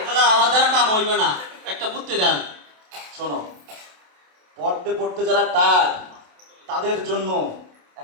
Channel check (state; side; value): late; left; 27 ms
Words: দাদা আমার দ্বারা কাম হইবে না, একটা বুদ্ধি দেন। শোনো, পড়তে পড়তে যারা টায়ার্ড তাদের জন্য